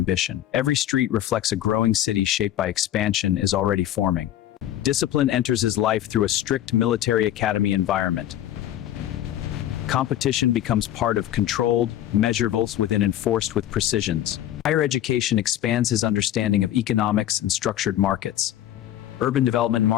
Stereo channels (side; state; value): right; quieter; 12.2 dB